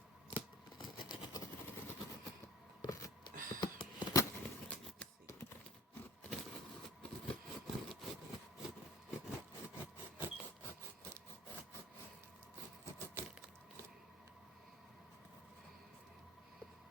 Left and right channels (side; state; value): both; normal; correlation 0.48